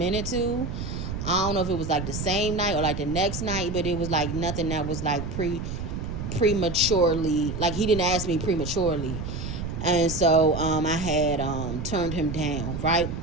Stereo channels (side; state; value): right; noise; rumble, 5 dB below the sound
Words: too. I don't know if it was like the same night or like the next night, but it was like nothing that was like prematurely, like he didn't ask me prematurely. And so I had turned him down, right?